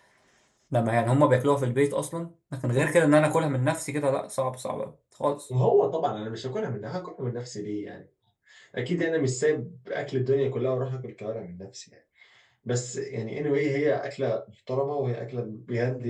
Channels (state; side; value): identical; both; correlation 1.00